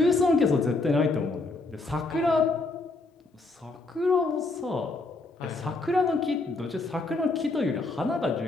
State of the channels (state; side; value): quieter; right; 3.4 dB